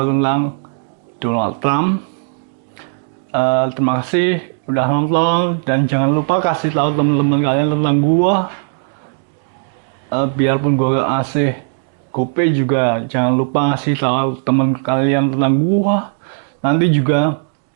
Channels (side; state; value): left; silent; digital silence